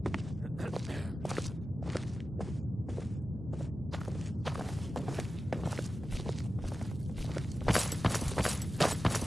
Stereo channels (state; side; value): normal; both; correlation 0.94